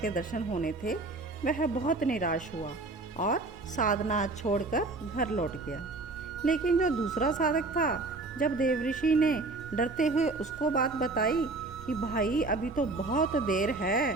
दर्शन होने थे वह बहुत निराश हुआ और साधना छोड़कर घर लौट गया। लेकिन जो दूसरा साधक था, जब देवऋषि ने डरते हुए उसको बात बताई कि भाई अभी तो बहुत देर है,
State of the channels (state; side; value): quieter; left; 3.3 dB